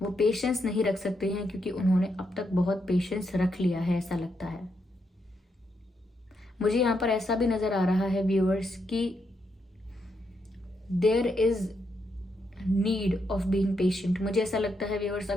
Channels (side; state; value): both; normal; correlation 0.80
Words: वो पेशेंस नहीं रख सकते हैं क्योंकि उन्होंने अब तक बहुत पेशेंस रख लिया है, ऐसा लगता है मुझे। यहाँ पर ऐसा भी नजर आ रहा है व्यूअर्स कि there is need of being patient. मुझे ऐसा लगता है व्यूअर्स,